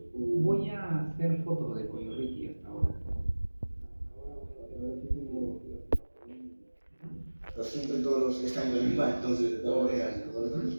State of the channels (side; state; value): both; inverted; correlation -1.00